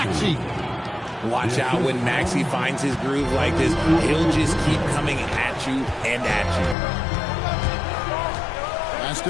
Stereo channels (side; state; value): right; drops out; at 6.8 s